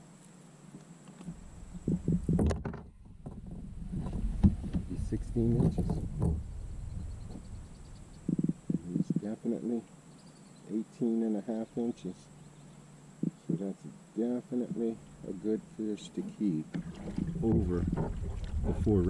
Be 16 inches. It's definitely 18 and a half inches. So that's definitely a good fish to keep over the 4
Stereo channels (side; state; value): both; identical; correlation 1.00